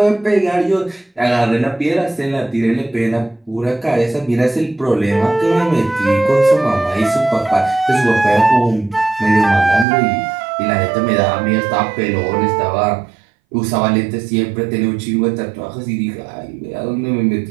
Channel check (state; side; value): drops out; left; at 9.9 s